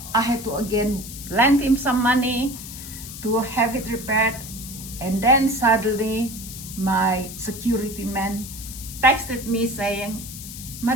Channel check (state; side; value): noise; left; hiss, 11 dB below the sound